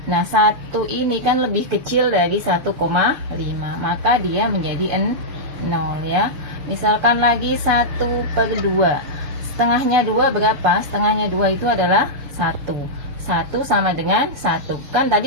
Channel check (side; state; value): left; late; 6.7 ms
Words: Nah 1 ini kan lebih kecil dari 1,5, maka dia menjadi 0 ya. Misalkan lagi 1/2, setengahnya 2 berapa? Setengahnya 2 itu adalah 1 sama dengan 1. Kan